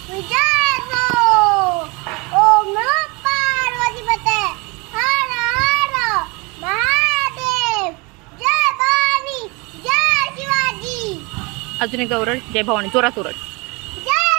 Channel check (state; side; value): quieter; left; 27.2 dB